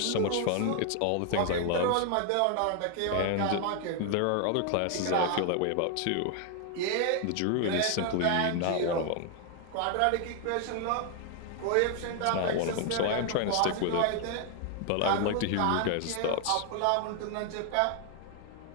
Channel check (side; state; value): both; different; correlation 0.00